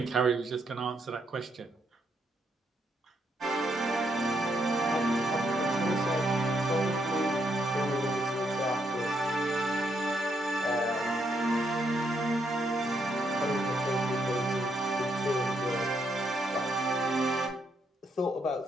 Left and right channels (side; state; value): both; normal; correlation 0.76